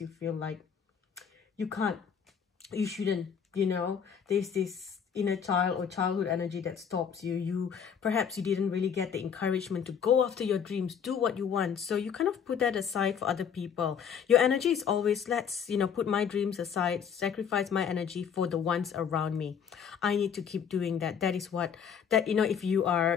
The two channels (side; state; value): right; quieter; 7.4 dB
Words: you feel like you can't, you shouldn't. You know, there's this inner child or childhood energy that stops you. Perhaps you didn't really get the encouragement to go after your dreams, do what you want. So you kind of put that aside for other people. Your energy is always, let's, you know, put my dreams aside, sacrifice my energy for the ones around me. I need to keep doing that. That is what, that, you know, if you